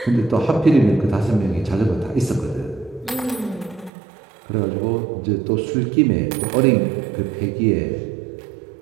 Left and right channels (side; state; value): left; drops out; at 3.9 s